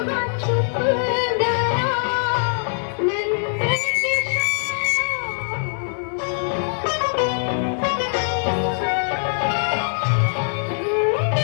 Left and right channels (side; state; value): right; silent; digital silence